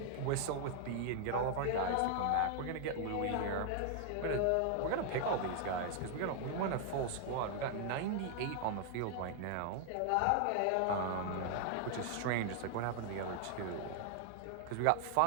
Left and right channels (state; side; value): different; both; correlation 0.00